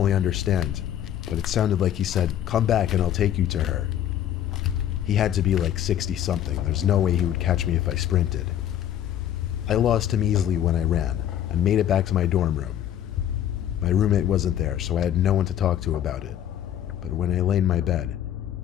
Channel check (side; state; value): right; quieter; 10.8 dB